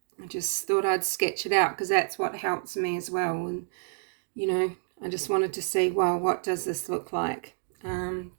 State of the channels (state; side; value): silent; left; digital silence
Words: I just thought I'd sketch it out because that's what helps me as well. And, you know, I just wanted to see, well, what does this look like?